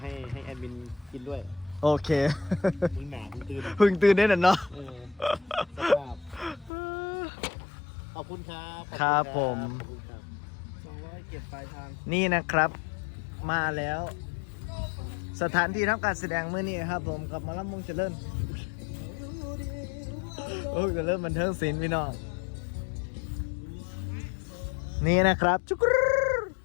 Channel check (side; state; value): right; drops out; at 6.7 s